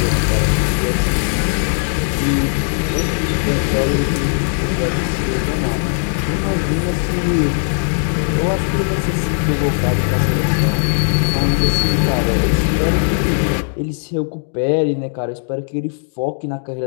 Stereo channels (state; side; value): silent; right; digital silence